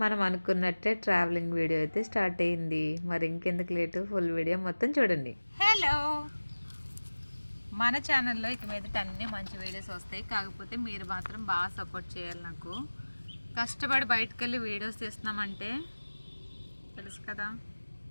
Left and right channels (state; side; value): inverted; both; correlation -1.00